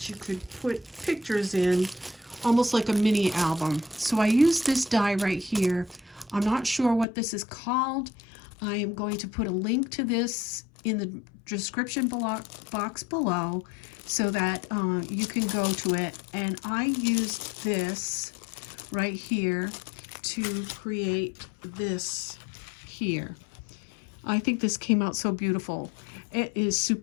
you could put pictures in, almost like a mini album. So I used this die right here. I'm not sure what this is called. I am going to put a link to this in the description box below so that you can go to it. And I used this right here to create this here. I think this came out so beautiful. It is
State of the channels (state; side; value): drops out; right; at 7.1 s